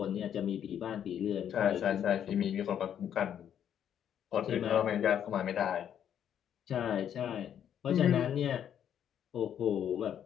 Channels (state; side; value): quieter; right; 9.4 dB